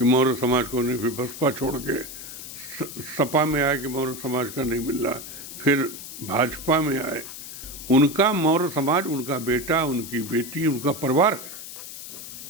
मौर्य समाज को नहीं, फिर बसपा छोड़ के सपा में आए कि मौर्य समाज का नहीं मिल रहा, फिर भाजपा में आए। उनका मौर्य समाज, उनका बेटा, उनकी बेटी, उनका परिवार है।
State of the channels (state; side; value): noise; left; hiss, 11 dB below the sound